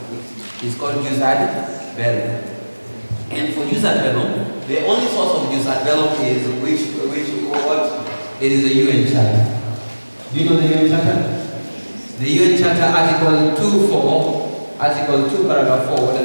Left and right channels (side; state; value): both; inverted; correlation -1.00